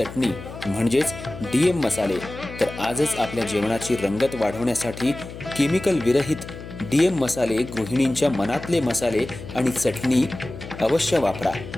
म्हणजेच डीएम मसाले. तर आजच आपल्या जेवणाची रंगत वाढवण्यासाठी केमिकल विरहित डीएम मसाले, गृहिणींच्या मनातले मसाले आणि चटणी अवश्य वापरा.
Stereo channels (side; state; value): left; noise; hum, 12 dB below the sound